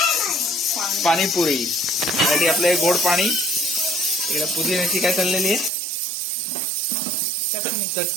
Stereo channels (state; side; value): drops out; left; at 5.7 s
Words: पाणीपुरी साठी आपलं गोड पाणी, इकडे पुदिन्याची काय चाललेली आहे